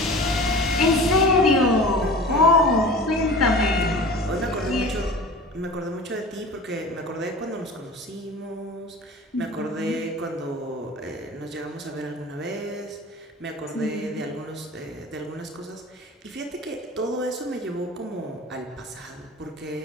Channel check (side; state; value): both; normal; correlation 0.38